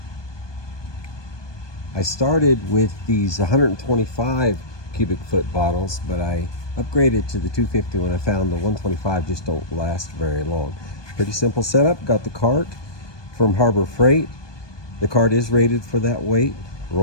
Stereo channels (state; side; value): late; right; 1.2 ms